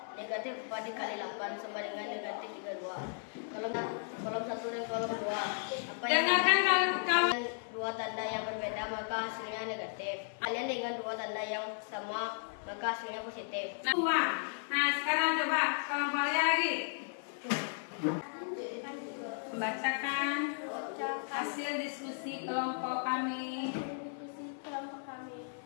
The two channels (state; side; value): silent; right; 54 dB below the other